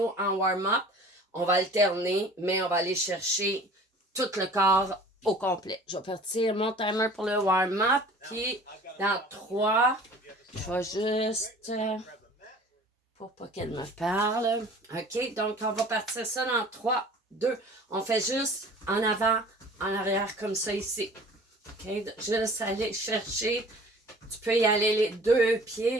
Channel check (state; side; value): normal; both; correlation 0.46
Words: en warm-up. On va alterner, mais on va aller chercher tout le corps au complet. Je vais partir mon timer pour le warm-up, puis dans 3, je vais juste... pour pas qu'elle me parle. OK, donc on va partir ça dans 3, 2. On fait juste en avant, en arrière, comme ça ici. OK, juste aller chercher. Tu peux y aller les 2